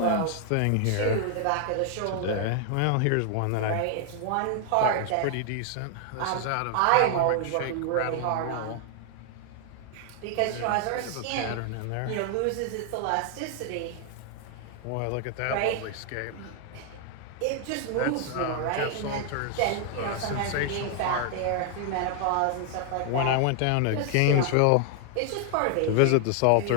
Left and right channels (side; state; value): both; different; correlation 0.00